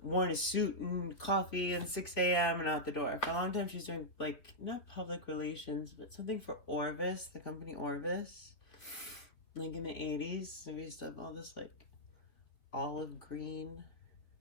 worn a suit and coffee and 6 a.m. and out the door. For a long time, she's doing like, not public relations, but something for Orvis, the company Orvis. Like in the 80s, so we used to have all this like olive green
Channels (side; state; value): right; late; 3.6 ms